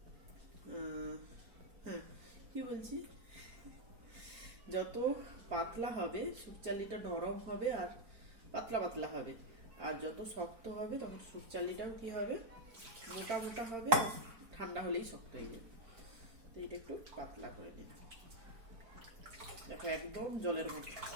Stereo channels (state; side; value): late; left; 4.4 ms